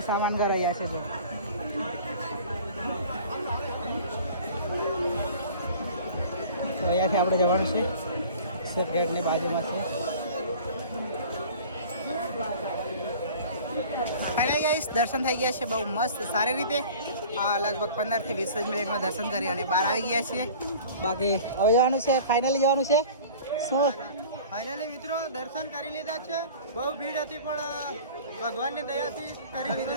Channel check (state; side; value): inverted; both; correlation -0.43